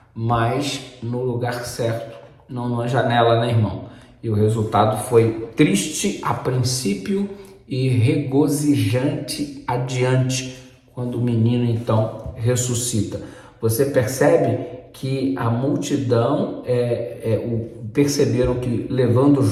mas no lugar certo, não numa janela, né, irmão? E o resultado foi triste a princípio e regozijante adiante, quando o menino então ressuscita. Você percebe que a multidão perceberam que, levando o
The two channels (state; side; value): identical; both; correlation 1.00